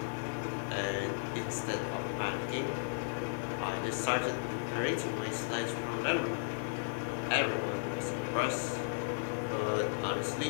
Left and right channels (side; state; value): right; silent; 54 dB below the other